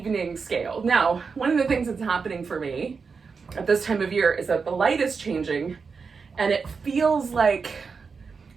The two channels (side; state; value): left; quieter; 5.2 dB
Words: scale. Now, one of the things that's happening for me at this time of year is that the light is changing and it feels like